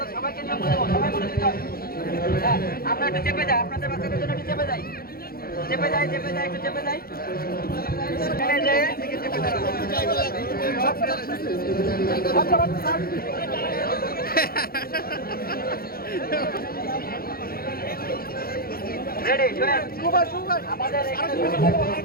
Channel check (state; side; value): late; right; 0.44 ms